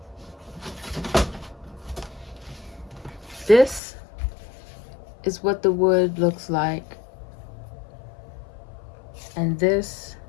This is what the wood looks like. And this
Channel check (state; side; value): drops out; right; at 3.8 s